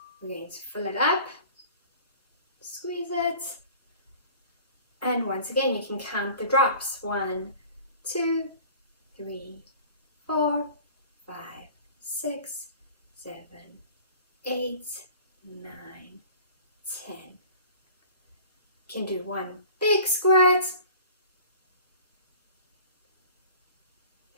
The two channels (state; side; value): inverted; both; correlation -0.45